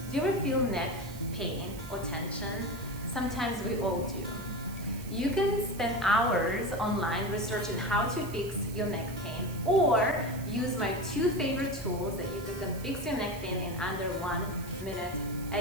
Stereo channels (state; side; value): noise; right; hiss, 16 dB below the sound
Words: Do you ever feel neck pain or tension? Sometimes we all do. You can spend hours online researching how to fix your neck pain, or use my 2 favorite tools that you can fix your neck pain in under 1 minute